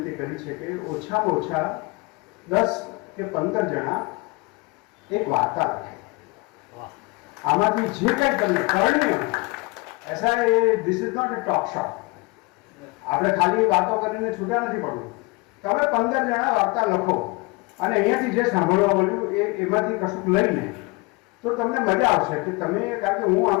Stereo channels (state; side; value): quieter; right; 26.1 dB